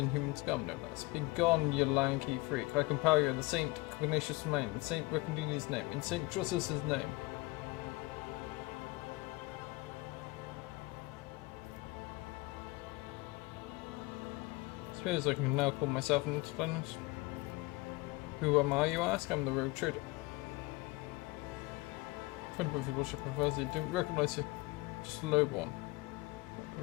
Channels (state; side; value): quieter; right; 22.9 dB